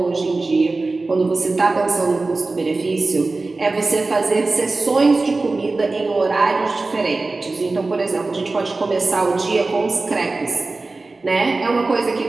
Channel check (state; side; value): quieter; left; 3.5 dB